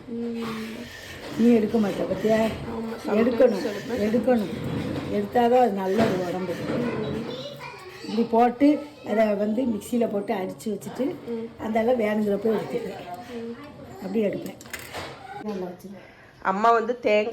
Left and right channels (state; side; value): identical; both; correlation 1.00